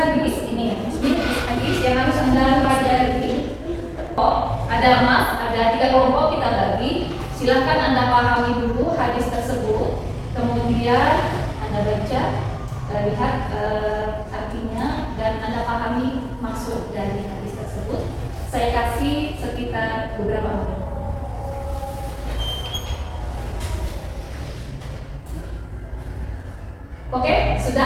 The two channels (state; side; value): identical; both; correlation 1.00